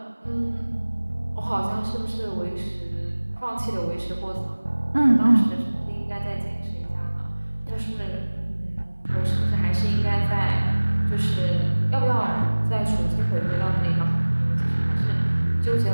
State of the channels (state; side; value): inverted; both; correlation -1.00